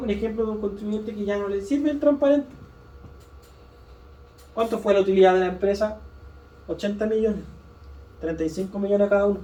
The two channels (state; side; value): identical; both; correlation 1.00